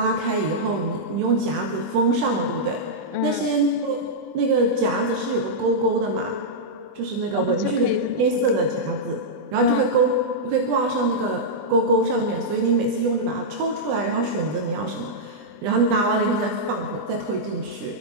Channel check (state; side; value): late; left; 20 ms